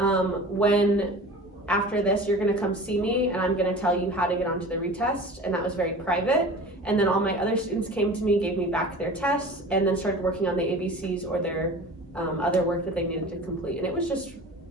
after this, you're gonna come see me and I'm gonna tell you how to get onto the retest. And that was very private. And then all my other students came to me, gave me back their tests, and then started working on the ABCs or their other work that they needed to complete. And it was just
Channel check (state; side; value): normal; both; correlation 0.39